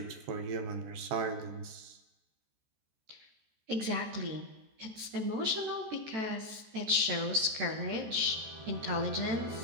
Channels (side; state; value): left; late; 14 ms